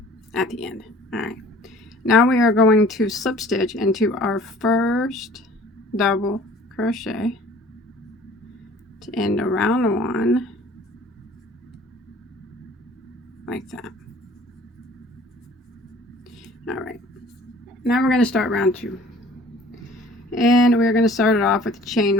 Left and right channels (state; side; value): normal; both; correlation 0.51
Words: at the end. All right, now we are going to slip stitch into our first double crochet to end around 1 like that. All right, now we're going to start round 2. And we're going to start it off with a